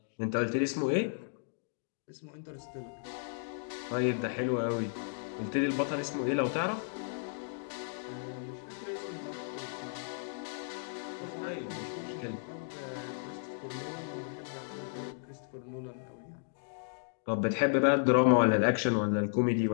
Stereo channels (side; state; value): right; silent; digital silence